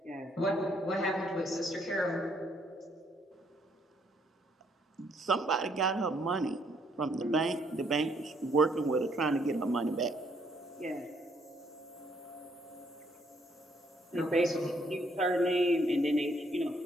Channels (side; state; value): both; normal; correlation 0.69